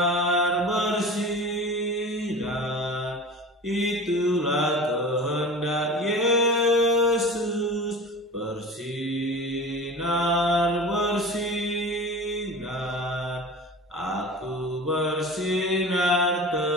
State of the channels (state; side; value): normal; both; correlation 0.35